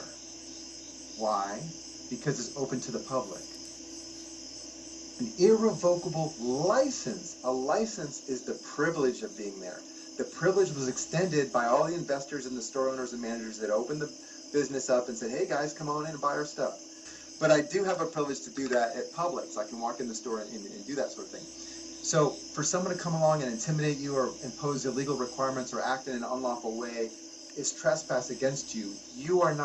Why? Because it's open to the public. An irrevocable license. A license is the privilege of being there. The privilege was extended by all the investors and the store owners and managers that opened the business up and said, hey guys, come on in and buy our stuff. But I do have a privilege to do that at Publix. I can walk in the store and do that sort of thing. So for someone to come along and intimidate you or impose illegal requirements or act in an unlawful way is trespass against you. You are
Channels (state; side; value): identical; both; correlation 1.00